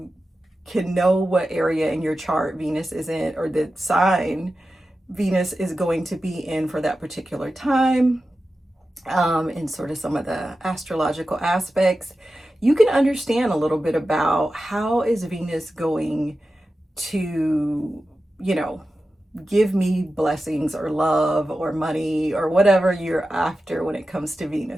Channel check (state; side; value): normal; both; correlation 0.93